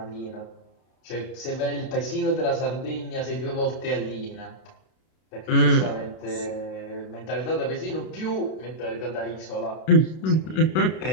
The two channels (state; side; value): late; right; 32 ms